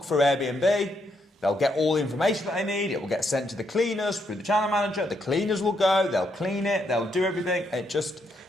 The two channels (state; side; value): normal; both; correlation 0.76